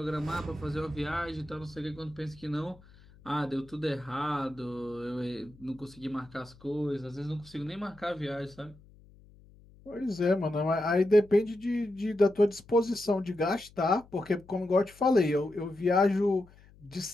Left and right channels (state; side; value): noise; left; hum, 25 dB below the sound